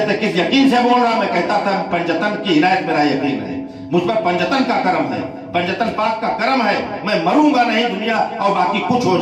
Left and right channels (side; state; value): both; identical; correlation 1.00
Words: تھے کس یقین سے بول رہا، میں کہتا تھا پنجتن کی عنایت میرا یقین ہے، مجھ پر پنجتن کا کرم ہے، پنجتن پاک کا کرم ہے، میں مروں گا نہیں دنیا اور باقی کچھ ہو